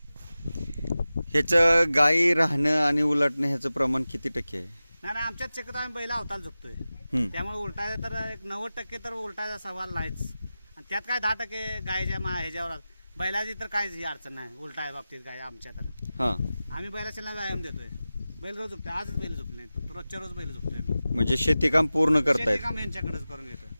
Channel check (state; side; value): inverted; both; correlation -0.95